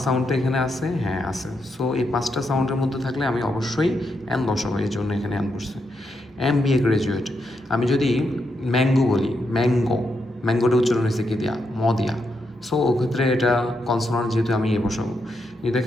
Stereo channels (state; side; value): normal; both; correlation 0.82